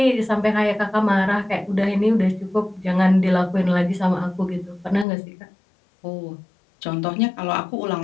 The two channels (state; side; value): drops out; right; at 5.1 s